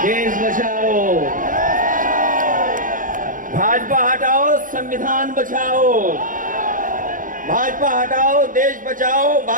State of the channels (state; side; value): late; left; 0.39 ms